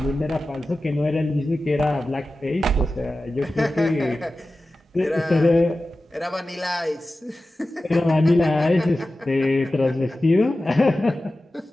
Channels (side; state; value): both; normal; correlation 0.95